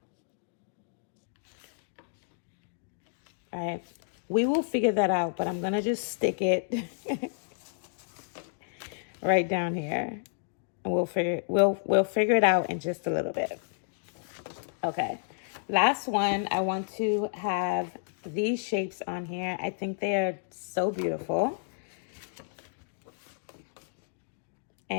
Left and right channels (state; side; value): silent; right; digital silence